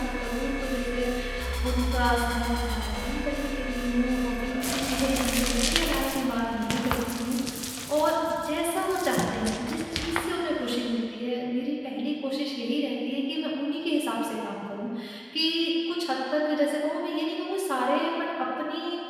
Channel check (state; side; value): identical; both; correlation 1.00